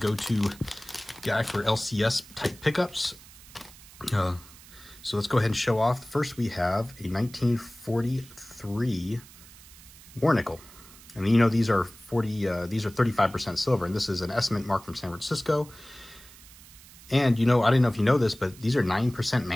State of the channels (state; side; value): noise; right; hiss, 21 dB below the sound